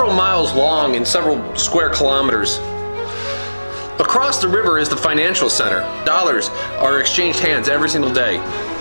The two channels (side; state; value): both; inverted; correlation -1.00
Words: miles long and several square kilometers. Across the river is the financial center. Dollars are exchanged hands every single day.